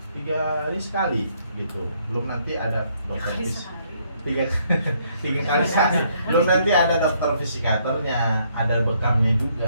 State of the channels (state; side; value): inverted; both; correlation -0.69